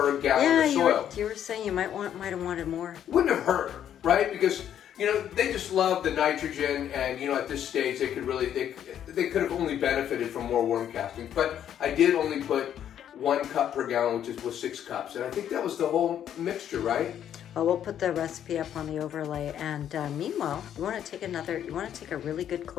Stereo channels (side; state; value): right; quieter; 10.0 dB